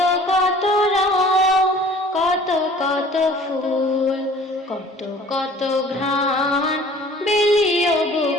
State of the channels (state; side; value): normal; both; correlation 0.50